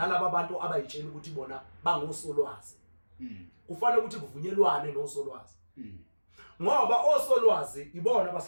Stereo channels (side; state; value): both; inverted; correlation -1.00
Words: bantu abayitshela ukuthi bona bangosolwazi kufanele ukuthi kuvunyelwane nosolwazi ngoba osolwazi ibona